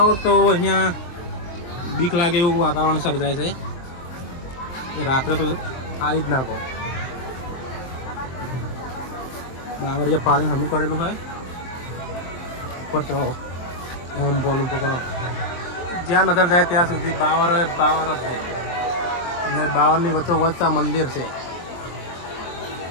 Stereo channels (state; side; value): late; right; 23 ms